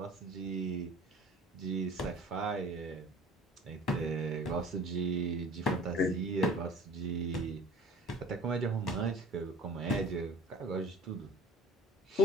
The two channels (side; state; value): both; normal; correlation 0.44